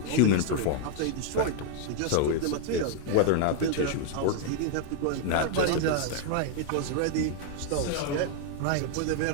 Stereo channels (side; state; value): both; different; correlation 0.00